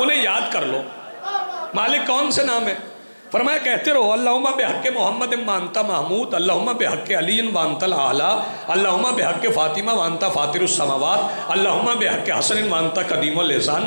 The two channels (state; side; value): inverted; both; correlation -1.00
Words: یاد کر لو۔ مالک کون سے نام ہے؟ فرمایا کہتے رہو اللہم بحق محمد وانت محمود، اللہم بحق علی وانت الاعلی، اللہم بحق فاطمہ وانت فاطر السماوات، اللہم بحق حسن وانت قدیم